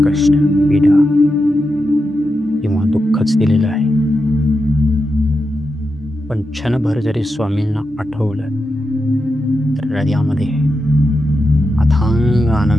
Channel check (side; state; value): both; normal; correlation 0.88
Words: कष्ट, पीडा किंवा दुःखच दिलेलं आहे. पण क्षणभर जरी स्वामींना आठवलं तर हृदयामध्ये अथांग